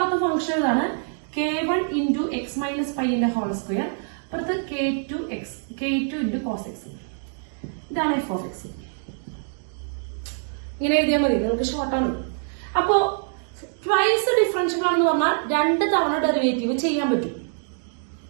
ഫംഗ്ഷൻ ഇതാണ്. K1 into x minus pi ന്റെ ഹോൾ സ്ക്വയർ, അപ്പുറത്ത് K2 into cos x. ഇതാണ് f of x. ഇങ്ങനെ എഴുതിയാൽ മതി, നിങ്ങൾക്ക് ഷോർട്ടാണ്. അപ്പോ ട്വൈസ് ഡിഫറൻഷ്യബിൾ ആണെന്ന് പറഞ്ഞാൽ 2 തവണ ഡെറിവേറ്റീവ് ചെയ്യാൻ പറ്റും.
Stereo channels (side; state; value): left; silent; digital silence